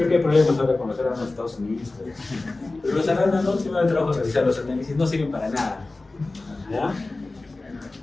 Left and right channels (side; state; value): right; quieter; 3.2 dB